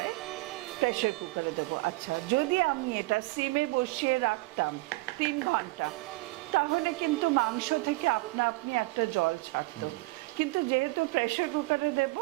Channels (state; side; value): quieter; left; 22.8 dB